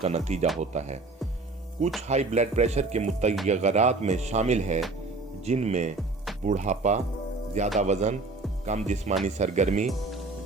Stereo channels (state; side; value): quieter; left; 3.5 dB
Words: नतीजा होता है। कुछ हाई ब्लड प्रेशर के मुतग़य्यरात में शामिल है जिनमें बुढ़ापा, ज़्यादा वज़न, कम जिस्मानी सरगर्मी,